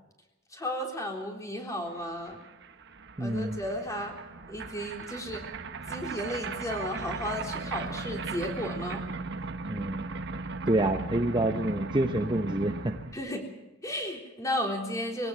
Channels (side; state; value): both; normal; correlation 0.54